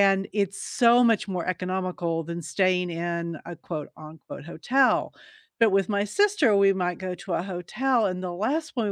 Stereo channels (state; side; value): identical; both; correlation 1.00